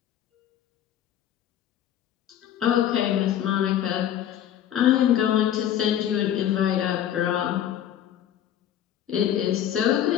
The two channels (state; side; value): quieter; right; 10.7 dB